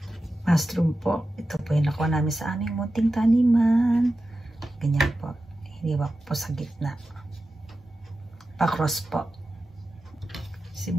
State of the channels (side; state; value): both; normal; correlation 0.92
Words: Mushroom po. Ito po yung nakuha namin sa aming munting taniman. Ganyan po. Hiniwa po sa gitna. Pa-cross po.